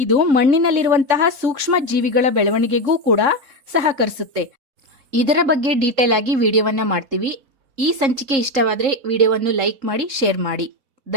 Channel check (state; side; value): late; left; 3.7 ms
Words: ಮಣ್ಣಿನಲ್ಲಿರುವಂತಹ ಸೂಕ್ಷ್ಮ ಜೀವಿಗಳ ಬೆಳವಣಿಗೆಗೂ ಕೂಡ ಸಹಕರಿಸುತ್ತೆ. ಇದರ ಬಗ್ಗೆ ಡೀಟೇಲ್ ಆಗಿ ವಿಡಿಯೋವನ್ನ ಮಾಡ್ತೀವಿ. ಈ ಸಂಚಿಕೆ ಇಷ್ಟವಾದರೆ ವಿಡಿಯೋವನ್ನು ಲೈಕ್ ಮಾಡಿ, ಶೇರ್ ಮಾಡಿ.